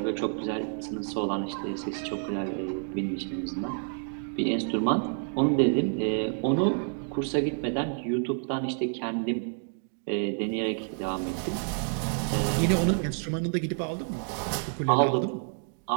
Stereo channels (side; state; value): left; silent; 59 dB below the other